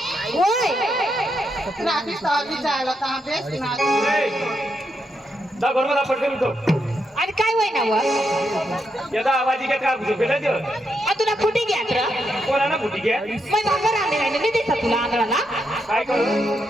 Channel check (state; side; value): normal; both; correlation 0.81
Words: होय रात्री सहावी जायला तर अभ्यास ना. जा घर मला पटकन उठव. आणि काय होय ना व याचा आवाज घेत का झोपेल्याच तुला फुटी घ्या तर कोणाला फुटी घ्या मग भाकर रांधे नाही मी देता तुला आंधळाला काय करू